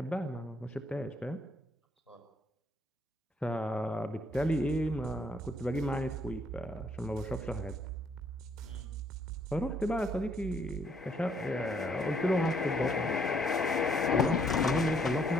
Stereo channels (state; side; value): normal; both; correlation 0.68